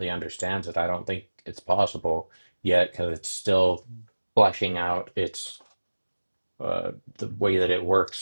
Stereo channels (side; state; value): both; inverted; correlation -1.00